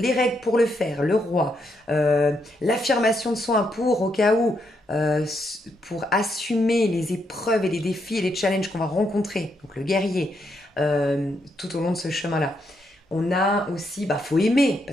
règles pour le faire, le roi, l'affirmation de soi pour au cas où, pour assumer les épreuves et les défis et les challenges qu'on va rencontrer, donc le guerrier, tout au long de ce chemin-là. On a aussi, faut aimer,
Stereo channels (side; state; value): both; normal; correlation 0.78